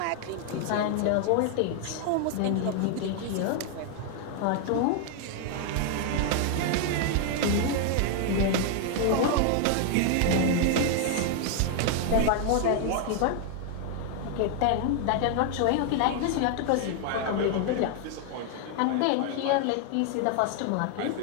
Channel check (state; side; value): different; both; correlation 0.00